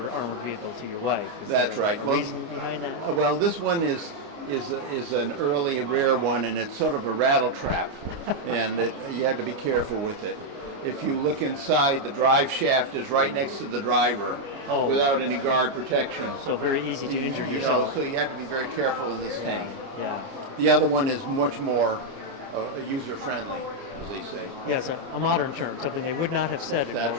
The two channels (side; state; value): left; late; 29 ms